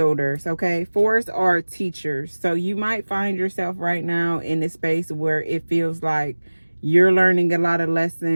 okay? 4s are teachers. So you might find yourself right now in a space where it feels like you're learning a lot of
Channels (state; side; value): inverted; both; correlation -1.00